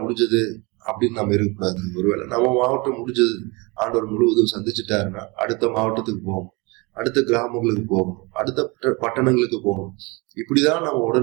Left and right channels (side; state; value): left; quieter; 26.9 dB